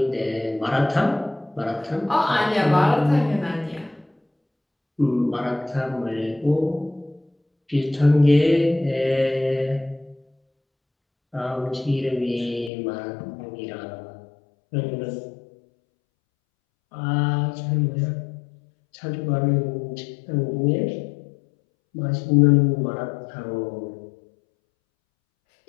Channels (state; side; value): drops out; right; at 12.7 s